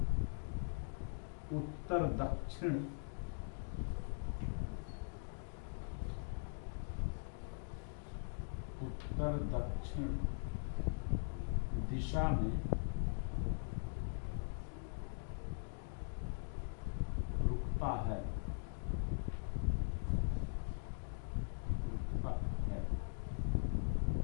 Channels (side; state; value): right; silent; digital silence